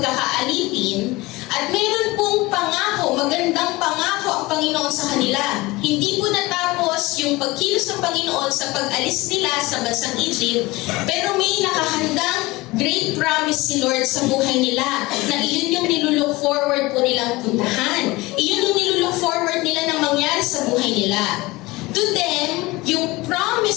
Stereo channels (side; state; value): right; quieter; 21.3 dB